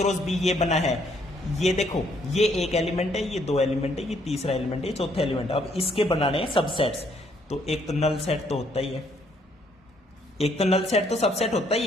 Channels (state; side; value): normal; both; correlation 0.68